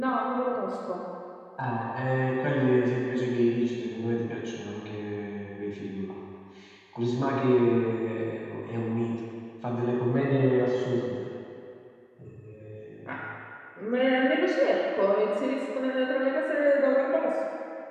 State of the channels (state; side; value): identical; both; correlation 1.00